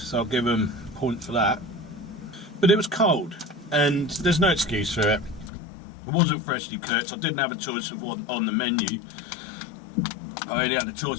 I'll give them a point for that. But it was cold, and there's no excuse for it. It wasn't freshly cooked. I didn't have a choice of what on the menu. I only had a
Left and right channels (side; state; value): right; drops out; at 5.5 s